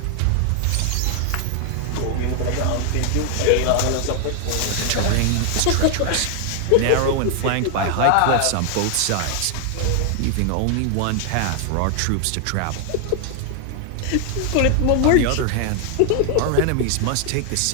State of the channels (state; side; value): different; both; correlation 0.00